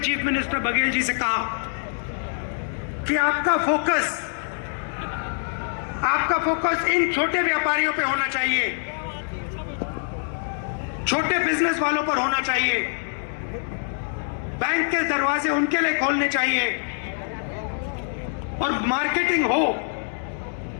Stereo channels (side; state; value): right; silent; digital silence